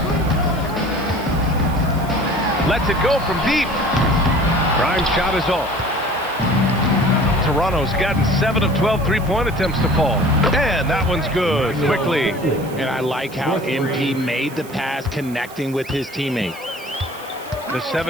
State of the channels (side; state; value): right; noise; hiss, 19 dB below the sound